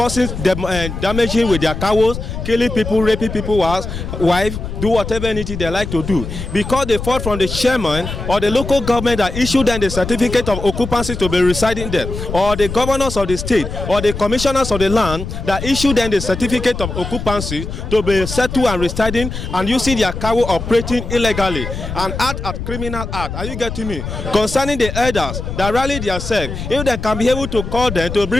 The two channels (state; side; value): noise; left; rumble, 7 dB below the sound